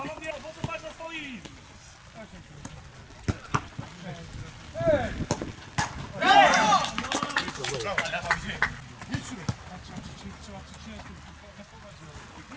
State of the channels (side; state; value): both; identical; correlation 1.00